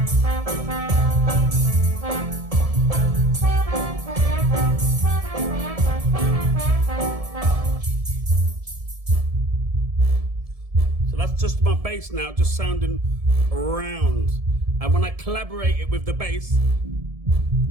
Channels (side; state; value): left; late; 1.7 ms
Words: Just my bass now, just sounding round. And when I collaborate it with the bass,